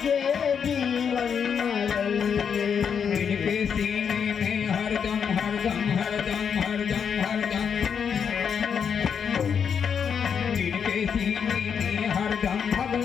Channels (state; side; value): quieter; right; 7.1 dB